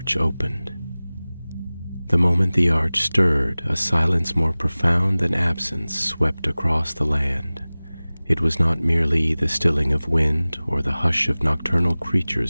opened. The moment the arch stirred, a silence more profound than absence swept across the land. It was not merely the stilling of wind or the hush of nocturnal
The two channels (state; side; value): inverted; both; correlation -0.99